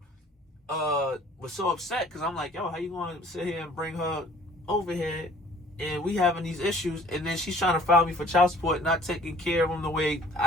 was so upset because I'm like, yo, how you going to sit here and bring her over here and we having these issues, and then she's trying to file me for child support, not taking care of them the way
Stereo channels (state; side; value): normal; both; correlation 0.53